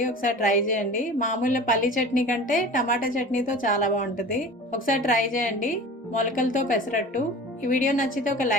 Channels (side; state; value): both; normal; correlation 0.38